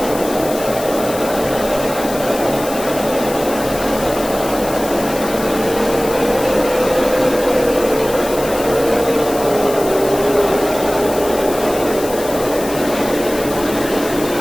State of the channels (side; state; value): left; noise; hiss, 11 dB below the sound